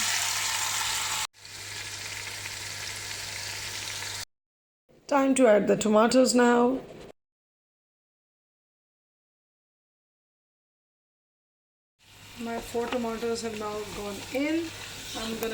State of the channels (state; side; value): identical; both; correlation 1.00